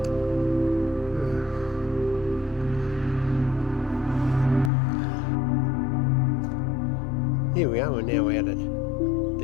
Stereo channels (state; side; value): drops out; right; at 4.7 s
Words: Here we are, we're now out at